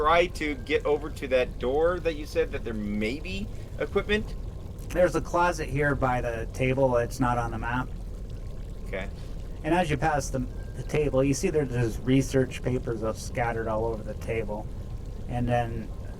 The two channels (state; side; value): identical; both; correlation 1.00